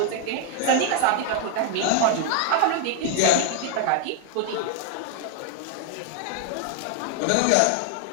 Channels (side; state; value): both; different; correlation 0.00